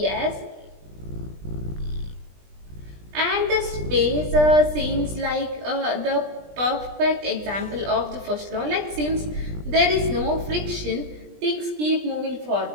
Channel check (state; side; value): late; left; 20 ms